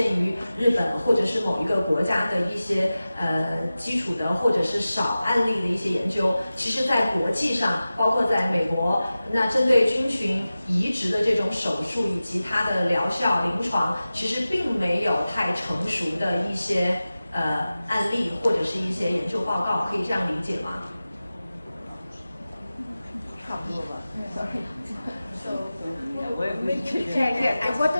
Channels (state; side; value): inverted; both; correlation -0.95